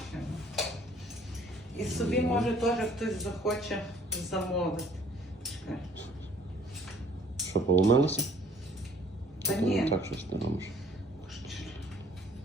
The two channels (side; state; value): both; normal; correlation 0.57